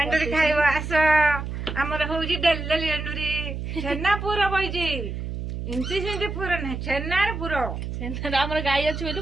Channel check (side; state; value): right; noise; hum, 6 dB below the sound